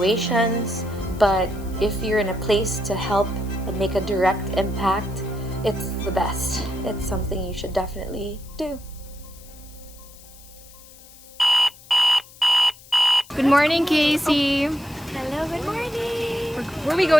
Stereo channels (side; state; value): left; noise; hiss, 22 dB below the sound